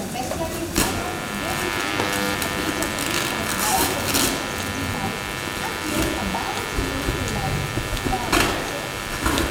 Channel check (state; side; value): identical; both; correlation 1.00